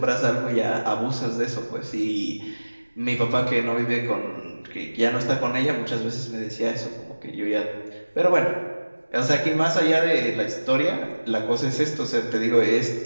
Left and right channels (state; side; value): inverted; both; correlation -1.00